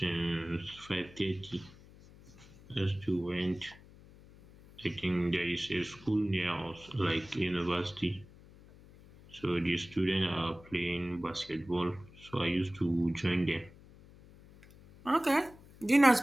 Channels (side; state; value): left; noise; hum, 22 dB below the sound